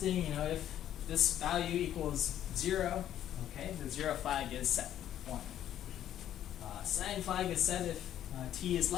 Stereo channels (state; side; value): quieter; right; 11.3 dB